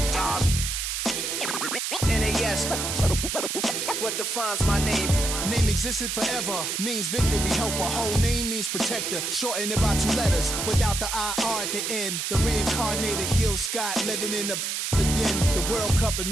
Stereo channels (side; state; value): right; noise; hiss, 2 dB below the sound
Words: NAS. What defines my name? Name existed forever, means victory, helper. Whole name means protector, shorten it by 2 letters, without the IR at the end. The reincarnated Gil Scott living in the again. The World Cup in